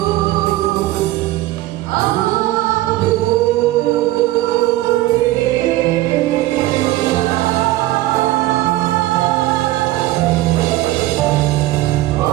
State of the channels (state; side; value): quieter; left; 16.8 dB